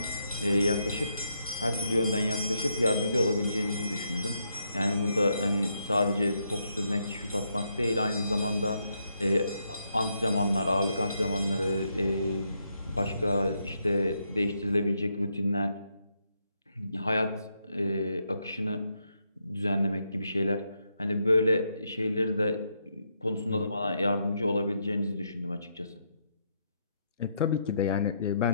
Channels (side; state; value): both; inverted; correlation -0.78